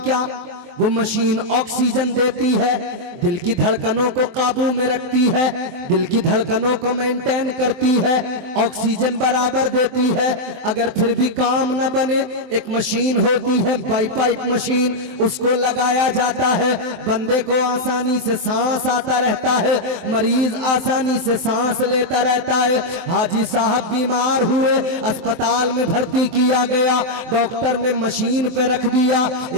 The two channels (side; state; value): left; late; 23 ms